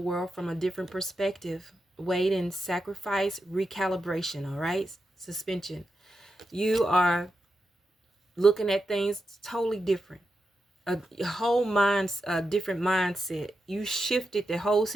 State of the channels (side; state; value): both; normal; correlation 0.88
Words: from a different perspective. Wait and sacrifice, recalibration, all right? Suspension. You are looking at things totally different. A whole different mindset. You shifted the whole